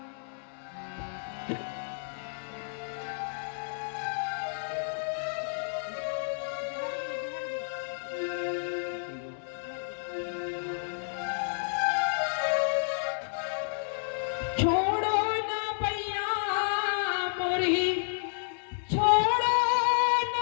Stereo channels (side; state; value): right; silent; 57 dB below the other